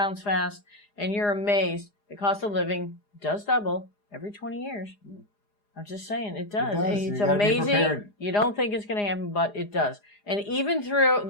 fast. And you're amazed. The cost of living does double every 20 years. I'm just saying, it does. It's amazing. You don't think it's going to happen, but it does. And even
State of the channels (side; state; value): right; late; 4.9 ms